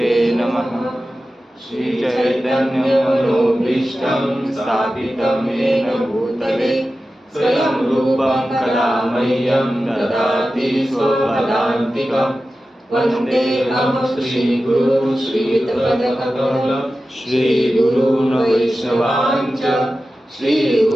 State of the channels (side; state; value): both; normal; correlation 0.94